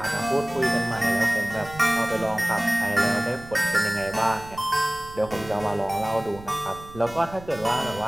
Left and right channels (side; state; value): right; noise; rumble, 17 dB below the sound